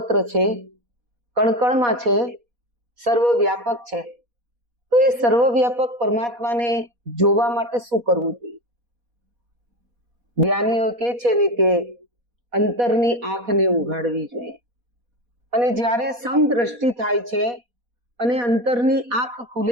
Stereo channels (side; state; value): left; late; 4.2 ms